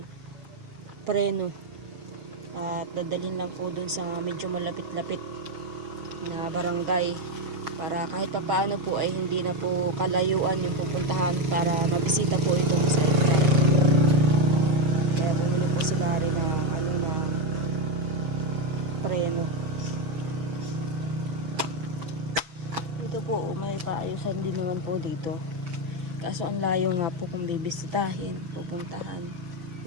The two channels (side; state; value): left; late; 6.7 ms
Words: preno. At dadalhin lang po dun sa medyo malapit-lapit na barangay para kahit papaano po ay hindi na po kalayuan yung pupuntahan para mabisita po itong sidecar. Kaya bumili po sila rin ng preno. Dito po may paayusan din naman po dito. Kaso ang layo nga po kung bibisitahin, pupuntahan,